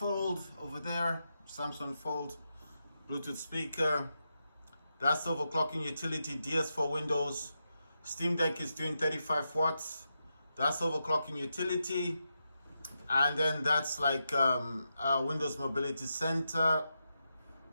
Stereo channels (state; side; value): inverted; both; correlation -0.87